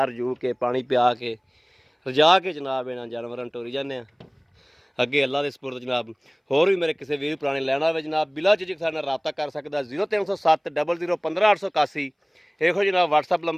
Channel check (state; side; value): identical; both; correlation 1.00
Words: ਰਜੂ ਕੇ ਪਾਣੀ ਪਿਆ ਕੇ ਰਜਾ ਕੇ ਜਨਾਬ ਇਹਨਾਂ ਜਾਨਵਰਾਂ ਨੂੰ ਟੋਰੀ ਜਾਂਦੇ ਆ ਅੱਗੇ ਅੱਲਾ ਦੇ ਸਪੁਰਦ ਜਨਾਬ। ਹੋਰ ਵੀ ਮੇਰੇ ਕਿਸੇ ਵੀਰ ਪੁਰਾਣੇ ਲੈਣਾ ਹੋਵੇ ਜਨਾਬ ਬਿਲਾ ਚਿਜਕ ਸਾਡੇ ਨਾਲ ਰਾਬਤਾ ਕਰ ਸਕਦਾ। 0307 00 15881 ਇਹੋ ਜਨਾਬ WhatsApp